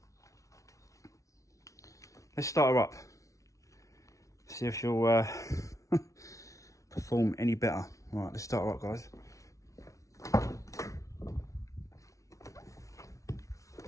her up, see if she'll perform any better. Right, let's start her up, guys.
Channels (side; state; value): right; late; 0.15 ms